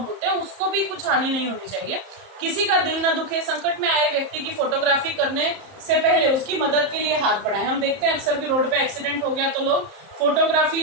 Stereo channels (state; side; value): late; left; 31 ms